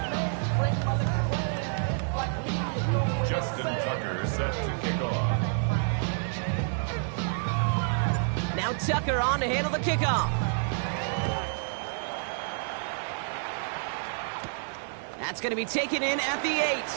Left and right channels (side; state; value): left; silent; 59 dB below the other